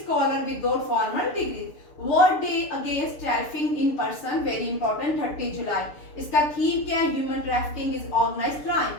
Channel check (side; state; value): right; late; 6.8 ms